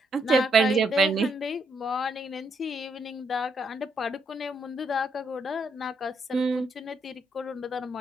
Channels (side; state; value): both; normal; correlation 0.75